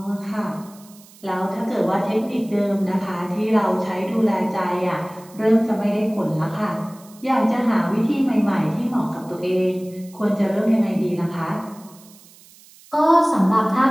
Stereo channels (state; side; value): noise; right; hiss, 24 dB below the sound